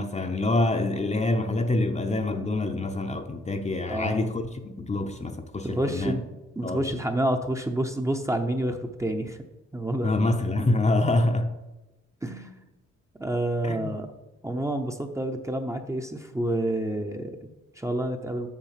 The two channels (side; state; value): both; normal; correlation 0.75